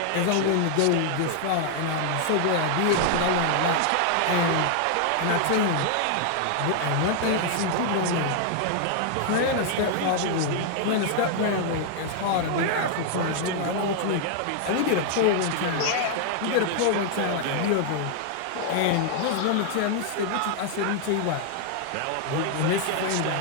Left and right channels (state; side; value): different; both; correlation 0.00